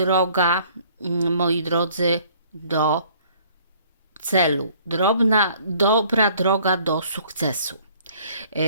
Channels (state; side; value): inverted; both; correlation -0.57